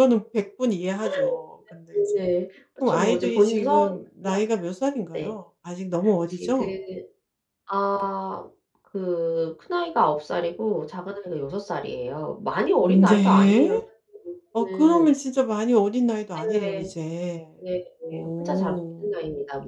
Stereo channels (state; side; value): identical; both; correlation 1.00